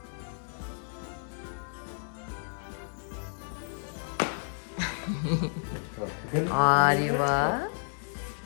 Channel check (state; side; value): silent; right; 57 dB below the other